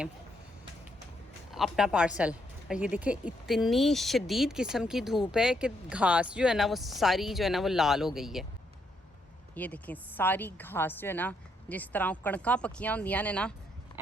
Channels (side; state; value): both; normal; correlation 0.75